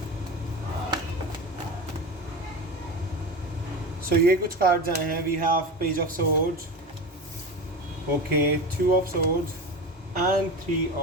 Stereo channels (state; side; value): normal; both; correlation 0.26